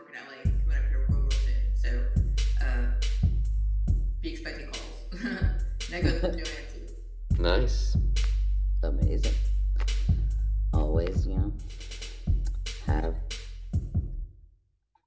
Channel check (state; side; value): identical; both; correlation 1.00